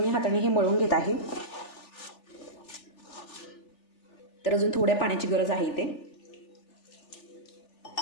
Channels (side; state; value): right; late; 3.4 ms